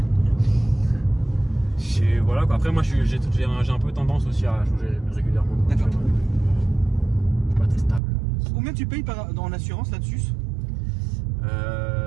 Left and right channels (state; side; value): drops out; left; at 8.0 s